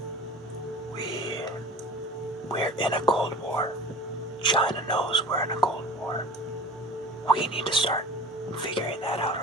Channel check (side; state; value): both; normal; correlation 0.40